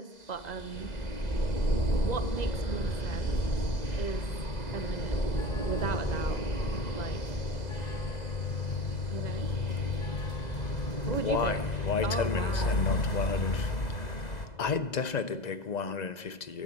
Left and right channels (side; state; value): right; late; 2.0 ms